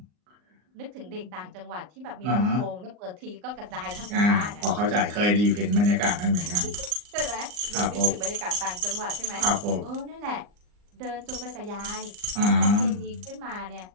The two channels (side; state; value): left; late; 39 ms